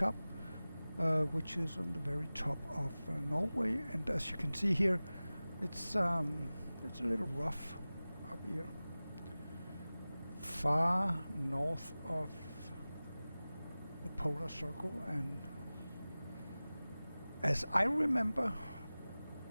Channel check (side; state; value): both; inverted; correlation -0.98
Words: which is on the very top of Norway. And as you can see here, it's a little rough up here, far north of the polar circle. And as I remember